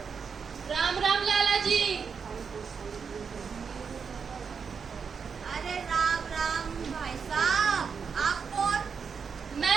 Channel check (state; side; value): quieter; left; 6.1 dB